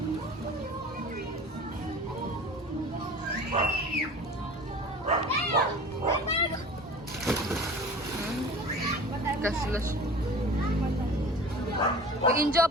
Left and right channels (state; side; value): normal; both; correlation 0.40